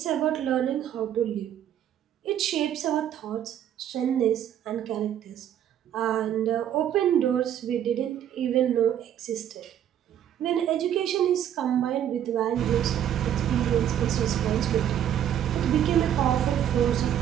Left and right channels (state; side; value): quieter; left; 10.3 dB